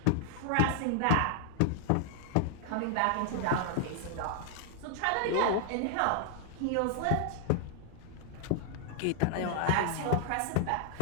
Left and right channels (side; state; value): both; different; correlation 0.00